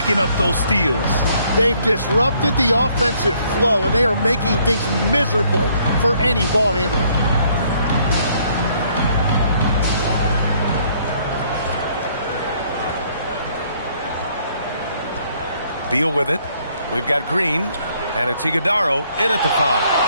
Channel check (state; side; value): inverted; both; correlation -0.66